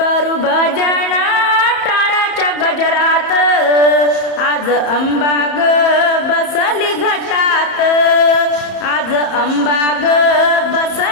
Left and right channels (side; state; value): right; late; 31 ms